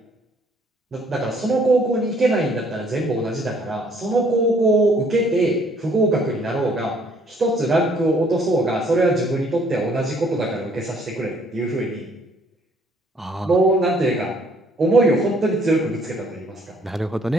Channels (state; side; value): normal; both; correlation 0.62